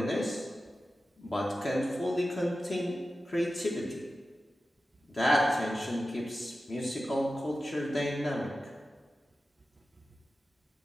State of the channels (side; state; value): both; normal; correlation 0.93